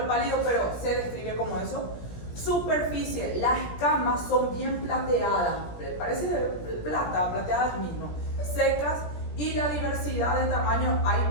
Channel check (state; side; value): late; right; 17 ms